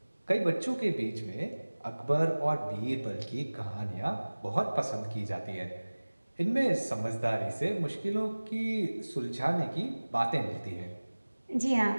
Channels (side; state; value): both; inverted; correlation -1.00